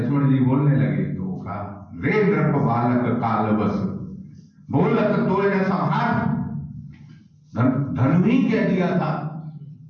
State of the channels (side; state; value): both; identical; correlation 1.00